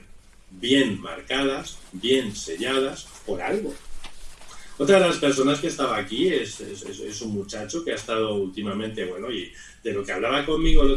bien marcadas, bien selladas, por algo. Otra de las personas que estaba aquí es un muchacho que ha estado últimamente, bueno, y de lo que hablaba conmigo el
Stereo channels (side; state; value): both; identical; correlation 1.00